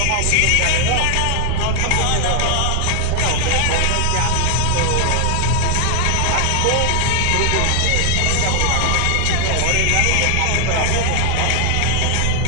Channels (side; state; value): both; different; correlation 0.00